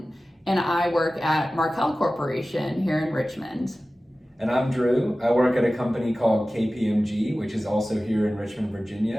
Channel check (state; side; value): normal; both; correlation 0.96